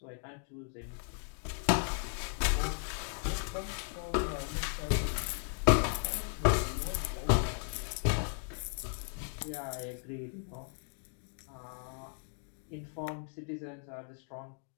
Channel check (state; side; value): silent; right; 54 dB below the other